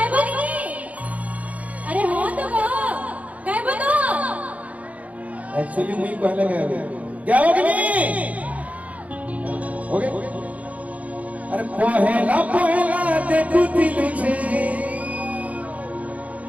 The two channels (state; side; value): late; left; 0.069 ms